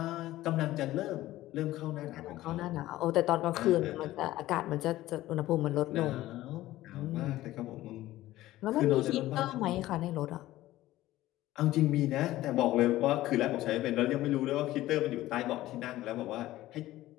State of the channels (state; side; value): quieter; right; 15.8 dB